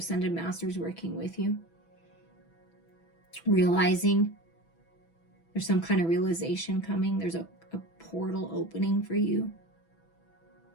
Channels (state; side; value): late; right; 6.0 ms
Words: Masters working with you. Realizing there's some kind of realization coming. There's a portal opening for you.